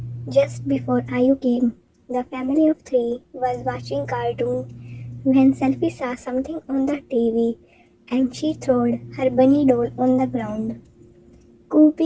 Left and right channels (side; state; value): both; identical; correlation 1.00